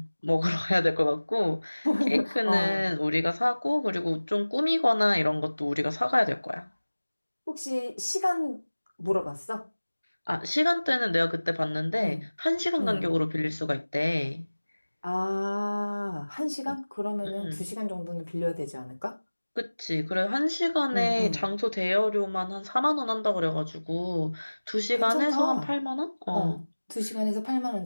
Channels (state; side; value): inverted; both; correlation -1.00